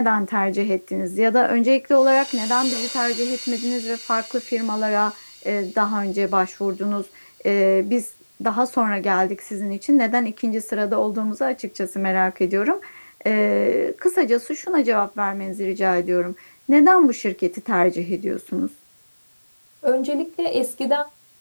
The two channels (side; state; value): both; inverted; correlation -1.00